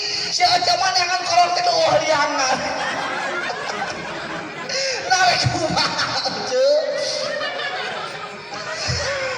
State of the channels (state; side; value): identical; both; correlation 1.00